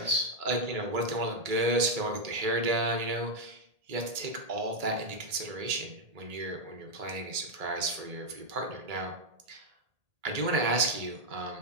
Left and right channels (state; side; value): late; left; 1.8 ms